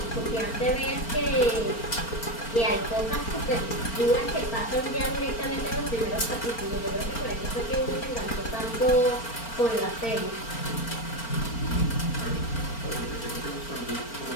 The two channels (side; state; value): right; late; 4.4 ms